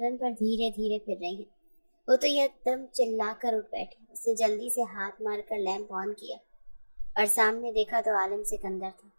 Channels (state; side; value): inverted; both; correlation -1.00